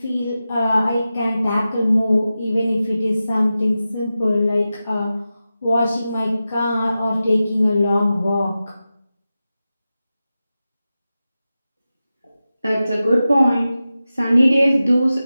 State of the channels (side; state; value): both; inverted; correlation -0.93